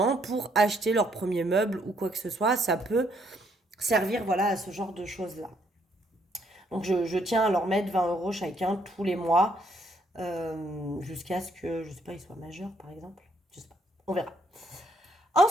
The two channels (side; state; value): both; normal; correlation 0.70